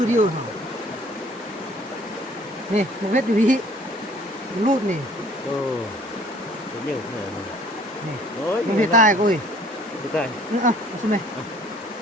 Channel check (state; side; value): normal; both; correlation 0.55